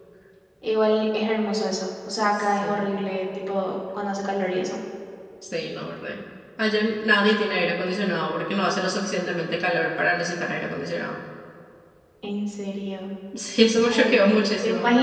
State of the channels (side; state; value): both; identical; correlation 1.00